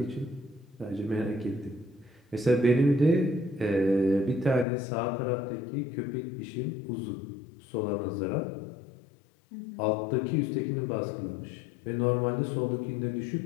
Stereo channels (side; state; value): right; drops out; at 4.7 s